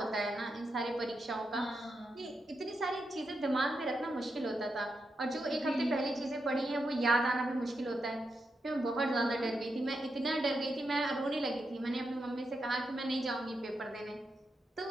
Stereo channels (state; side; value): normal; both; correlation 0.85